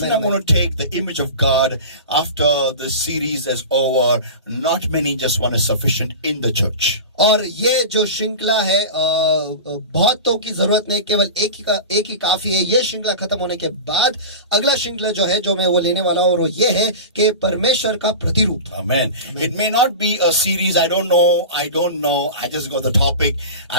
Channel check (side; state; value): both; inverted; correlation -0.30